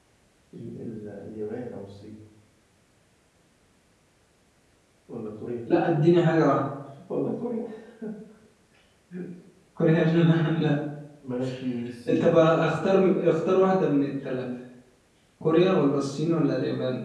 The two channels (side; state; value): both; identical; correlation 1.00